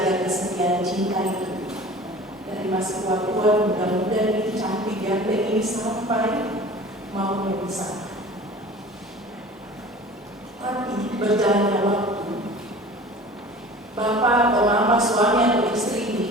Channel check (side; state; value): both; normal; correlation 0.42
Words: kesetiaan cinta itu. Dari masih tua-tua, muda-muda ini cantik ganteng ini sampai mau memisah. Tapi berjalannya waktu, bapak atau mama, suami atau istri ini